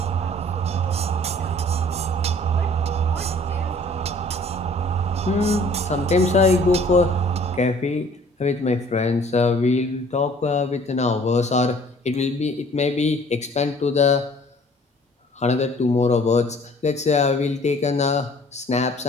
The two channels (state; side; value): normal; both; correlation 0.54